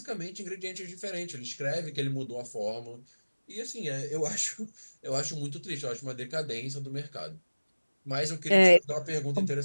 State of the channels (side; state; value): both; inverted; correlation -1.00